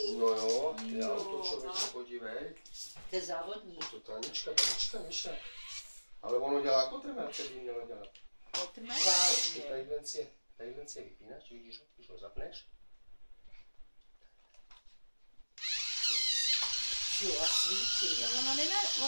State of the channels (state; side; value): inverted; both; correlation -1.00